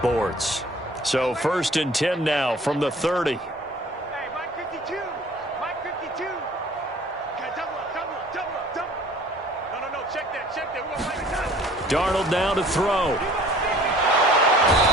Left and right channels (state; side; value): normal; both; correlation 0.51